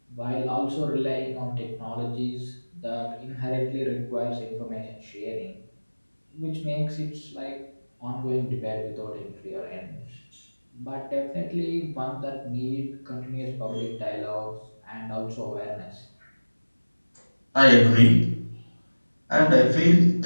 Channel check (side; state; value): both; inverted; correlation -1.00